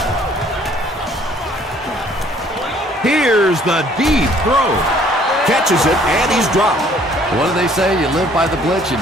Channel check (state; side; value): normal; both; correlation 0.59